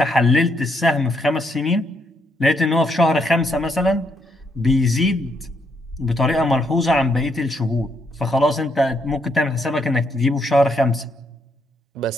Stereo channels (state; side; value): normal; both; correlation 0.75